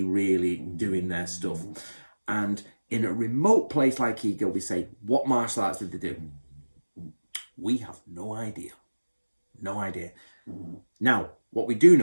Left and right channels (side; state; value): both; inverted; correlation -1.00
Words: really doing their stuff. And in a remote place like Iga, we say, what martial arts did they do? We have no idea. No idea. Now, what we do